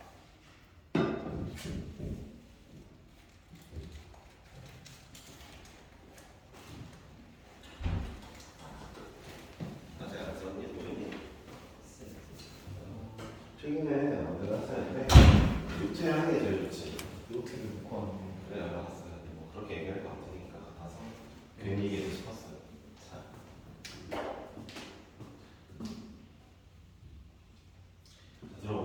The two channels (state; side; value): identical; both; correlation 1.00